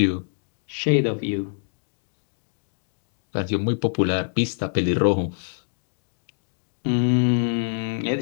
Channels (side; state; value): right; silent; digital silence